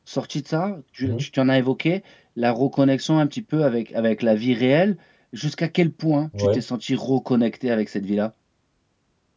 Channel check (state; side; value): identical; both; correlation 1.00